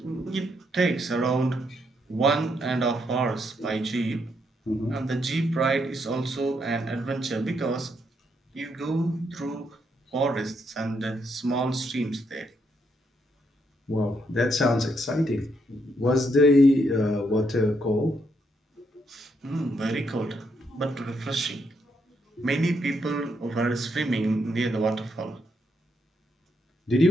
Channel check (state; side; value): normal; both; correlation 0.77